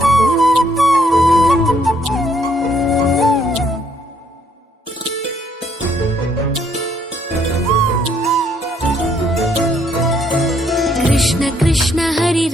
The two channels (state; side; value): normal; both; correlation 0.69